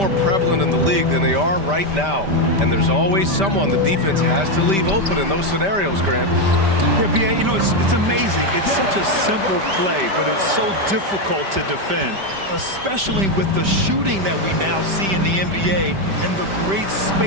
prevalent in the league than they are right now. And there's always someone the defense has to leave open in those scenarios, Grant. Yeah, B.A., you know, it's amazing. It's such a simple play, but it's so difficult to defend, especially with the shooting that we now see in the NBA and the great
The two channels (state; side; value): late; left; 5.1 ms